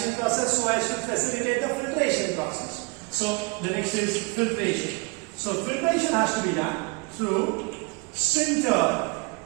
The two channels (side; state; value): left; quieter; 30.6 dB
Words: process so as to facilitate the filtration process. So the next is filtration. So filtration has to be done through sintered